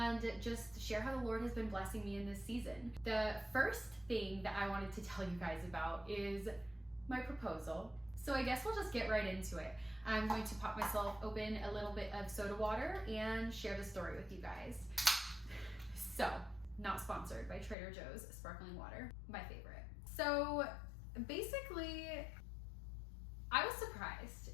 just share how the Lord has been blessing me in this season. The first thing that I wanted to tell you guys about is my proposal. So I guess we'll just get right into it. I'm going to pop myself open a little bit of soda water and share the story with you guys. So, not sponsored by Trader Joe's sparkling water, my favorite. So basically, I was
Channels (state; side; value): drops out; right; at 17.8 s